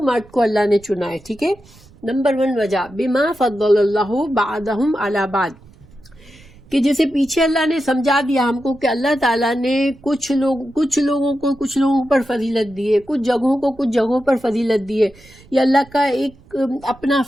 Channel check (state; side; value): noise; right; rumble, 25 dB below the sound